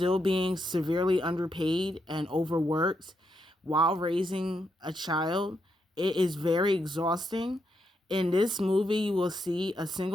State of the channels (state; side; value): normal; both; correlation 0.81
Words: being severely underpaid and overworked while raising a child, it is very exhausting. In this movie, you will see a